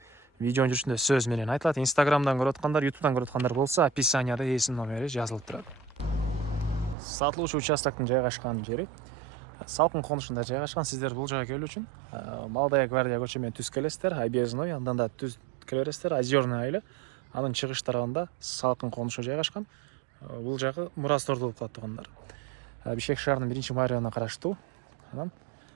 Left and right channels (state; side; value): drops out; left; at 7.0 s